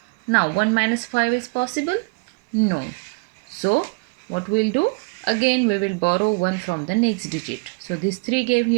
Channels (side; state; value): left; quieter; 32.3 dB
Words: Now 1 minus 5 is possible? No. So what we'll do? Again we will borrow 1 from the next digit. So this 3 gave